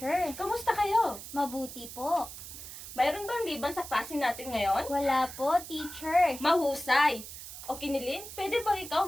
Kamusta kayo? Mabuti po. Mayroon bang liban sa klase natin ngayon? Wala po, teacher. Mahusay! O Kinilin, pwede bang ikaw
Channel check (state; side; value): noise; right; hiss, 12 dB below the sound